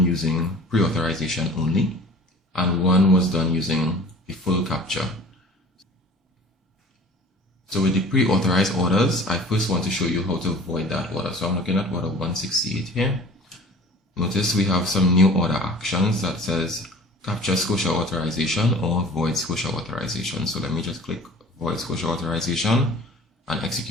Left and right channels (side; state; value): both; normal; correlation 0.45